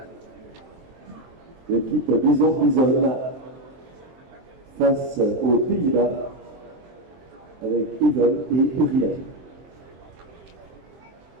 L'équipe Bison face aux Pays-Bas avec Yvonne et Uriel.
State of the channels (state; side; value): late; left; 23 ms